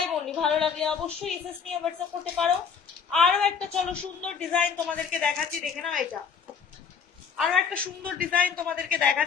অনলি। ভালো লাগলে অবশ্যই এসএস নিয়ে হোয়াটসঅ্যাপ করতে পারো। আরো একটা চলো সুন্দর ডিজাইন তোমাদেরকে দেখাচ্ছি, দেখে নাও। এটা আরো একটা সুন্দর ডিজাইন তোমাদেরকে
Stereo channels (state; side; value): quieter; right; 6.5 dB